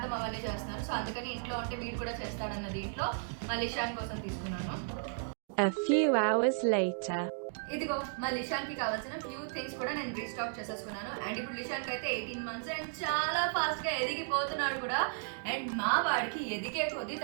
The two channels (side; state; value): left; silent; digital silence